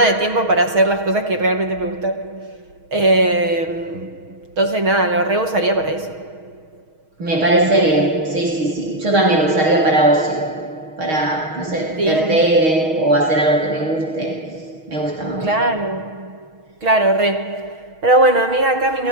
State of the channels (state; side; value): late; left; 6.3 ms